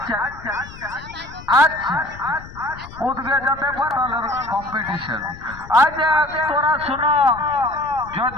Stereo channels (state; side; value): noise; left; rumble, 17 dB below the sound